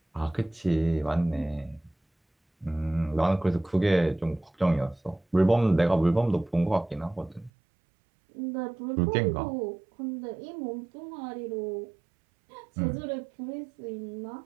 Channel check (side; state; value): left; drops out; at 7.5 s